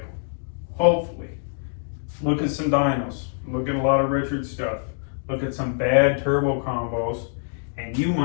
Hopefully. Look at some dynos. Look at a lot of Richard stuff. Look at some bad turbo combos, and you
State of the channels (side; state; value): right; silent; digital silence